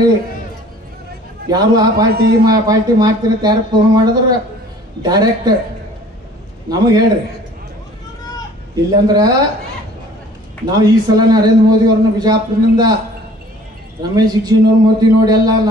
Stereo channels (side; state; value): both; normal; correlation 0.51